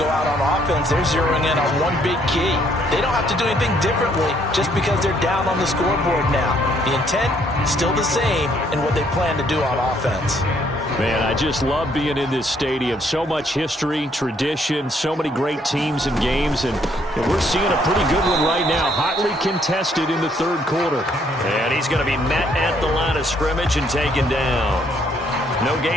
out on offense, they're zeroing in on one big key. They don't have to do anything differently just because they're down on the scoreboard now. The intent, still the same in what they plan to do on offense. Man, I just love being in this stadium. So much history, tradition, so many great teams and games, and we're seeing a pretty good one right now, hotly contested in the 3rd quarter. And he's going to be met at the line of scrimmage and taken down. No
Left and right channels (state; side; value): normal; both; correlation 0.68